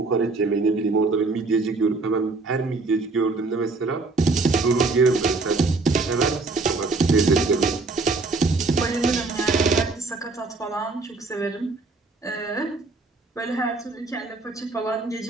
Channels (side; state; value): left; quieter; 3.7 dB